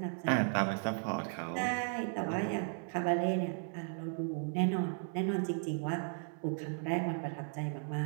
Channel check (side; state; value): left; silent; 54 dB below the other